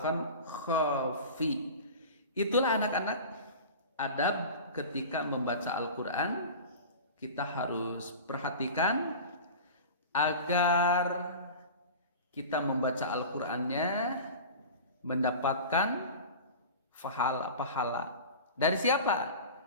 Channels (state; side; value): inverted; both; correlation -0.34